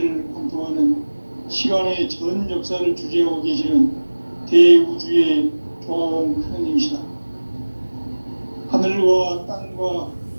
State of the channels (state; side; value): inverted; both; correlation -1.00